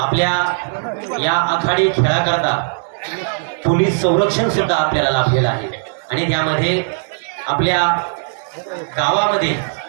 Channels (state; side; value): silent; left; digital silence